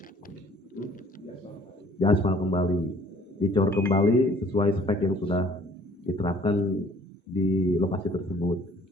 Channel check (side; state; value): both; normal; correlation 0.56